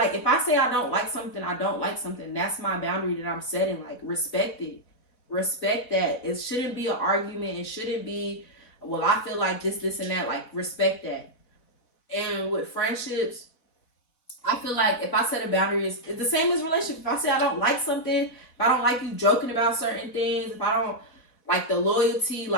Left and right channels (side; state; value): right; late; 4.1 ms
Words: if I say I don't like something, I don't like something. That's my boundary that I'm setting. Like, respect it. Respect that. It shouldn't be an argument. It shouldn't be, well, I feel like this, and that. Like, respect that. And with friendships, I feel like if I set a boundary, it's the same as relationship. If I say I don't like something, if I don't like you joking about certain things, if I don't like the loyalty,